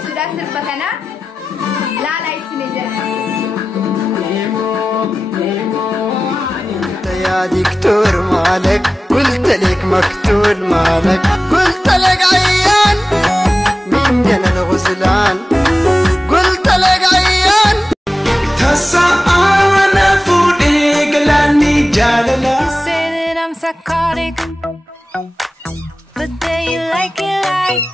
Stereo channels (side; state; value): both; normal; correlation 0.95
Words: سودا سر بكنا لا يصير جرا يا دكتور مالك قلت لك مقتول مالك قلت لك عيان من جن الغسلان قلت لك عيان تسعانا فوديك لاني جالنا You say that I'm psychotic, but then you like it like